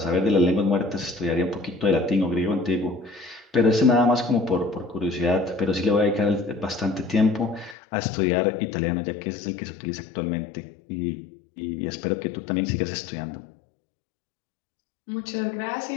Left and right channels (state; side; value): drops out; right; at 7.8 s